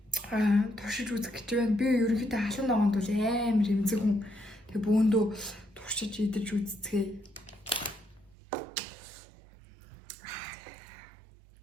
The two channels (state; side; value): drops out; left; at 8.3 s